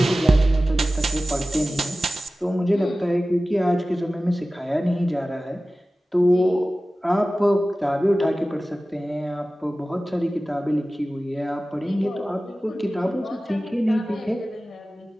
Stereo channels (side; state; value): both; normal; correlation 0.96